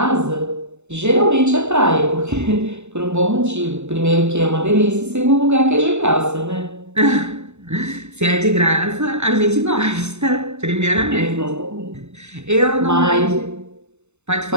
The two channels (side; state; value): left; late; 0.82 ms